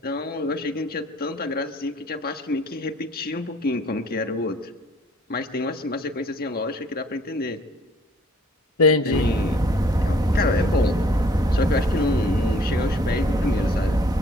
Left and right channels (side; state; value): both; normal; correlation 0.58